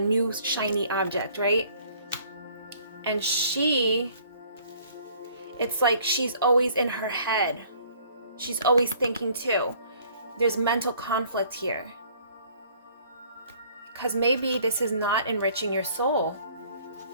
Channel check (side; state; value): both; inverted; correlation -0.57